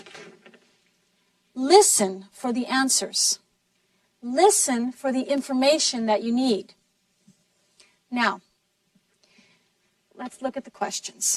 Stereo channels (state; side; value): identical; both; correlation 1.00